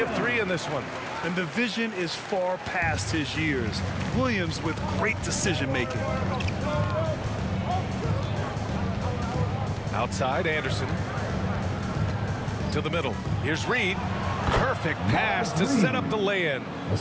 3 in this one. And the vision is far past his years. Williams with great decision-making. Outside, Anderson. To the middle. Here's Reed. Perfect pass to set up the lay-in.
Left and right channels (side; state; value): both; identical; correlation 1.00